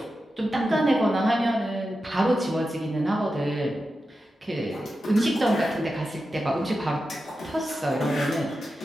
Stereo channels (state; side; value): normal; both; correlation 0.91